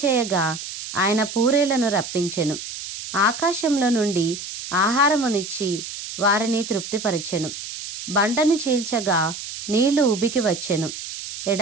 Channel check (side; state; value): right; noise; hiss, 9 dB below the sound